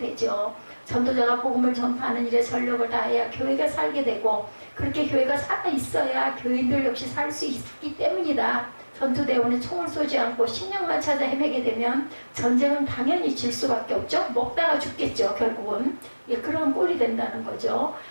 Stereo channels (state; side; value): inverted; both; correlation -1.00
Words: 전도자가 복음을 전파하는 일에 전력을 다해야 교회가 살게 되고 그렇게 교회가 살아 있어야 교인들 역시 살 수 있기 때문이다. 전투대원은 총을 쏘지 않고 식량만 찾아 헤매게 되면 전쟁은 당연히 질 수밖에 없죠. 먹다가 죽겠죠. 결국은 그런 꼴이 된다는 거죠.